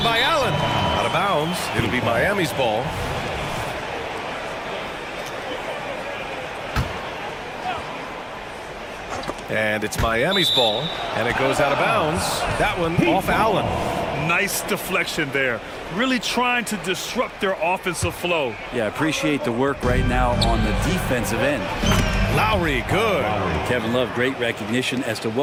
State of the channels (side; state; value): both; identical; correlation 1.00